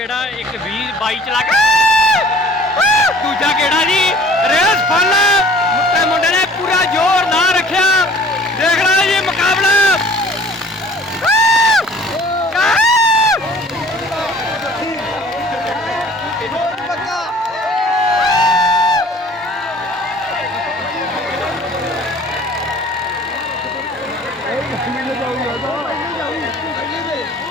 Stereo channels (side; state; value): both; normal; correlation 0.50